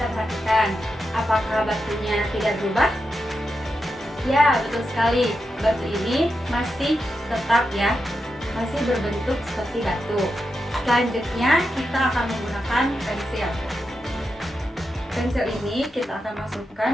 perhatikan apakah batunya tidak berubah? Ya, betul sekali. Batu ini masih tetap ya, masih berbentuk seperti batu. Selanjutnya kita akan menggunakan pensil. Pensil ini kita akan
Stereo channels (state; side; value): normal; both; correlation 0.87